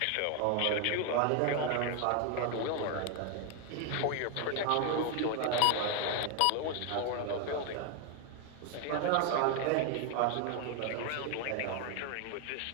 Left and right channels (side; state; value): both; different; correlation 0.01